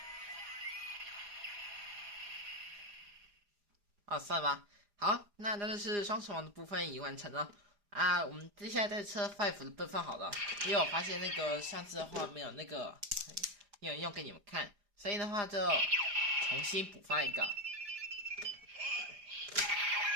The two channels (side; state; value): left; late; 4.9 ms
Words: 算了吧。好，那就是双手王的部分已经完成了啊。我们接下来再测 Five 的部分好了，因为我发现那个上次的话没有那个没有用给你们看，所以的话就重新补发一个。